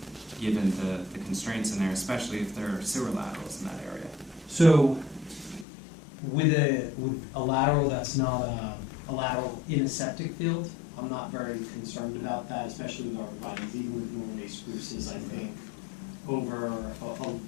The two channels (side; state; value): right; drops out; at 5.7 s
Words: given the constraints in there, especially if there are sewer laterals in that area. So with a lateral that's not a lateral in a septic field, I'm not very concerned about that, especially with arborvitaes, even with Norway spruces. I think over